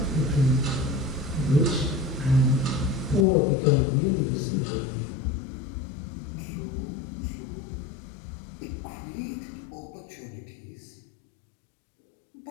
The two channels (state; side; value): drops out; right; at 3.2 s